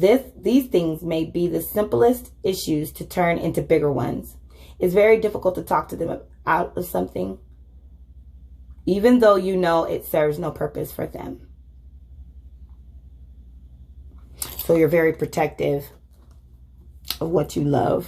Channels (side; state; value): both; identical; correlation 1.00